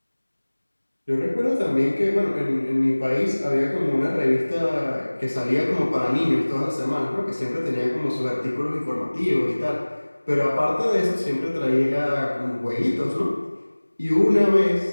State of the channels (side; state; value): both; inverted; correlation -1.00